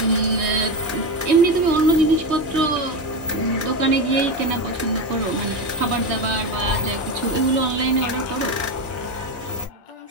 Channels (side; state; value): both; normal; correlation 0.16